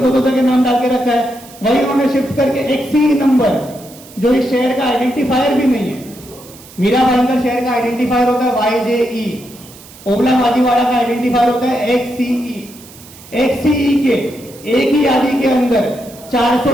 दो जगह नाम डाल के रखा है, वही उन्होंने शिफ्ट करके एक सी नंबर, जो इस शहर का आइडेंटिफायर भी नहीं है। मीरा भाईंदर शहर का आइडेंटिफायर होता है YJE, ओबला माजीवाड़ा का आइडेंटिफायर होता है XCE। XCE के एक ही यादी के अंदर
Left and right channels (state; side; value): noise; right; hiss, 21 dB below the sound